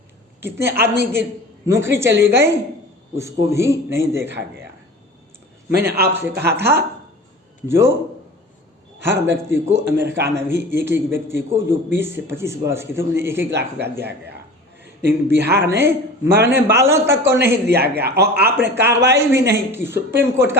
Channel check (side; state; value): both; normal; correlation 0.38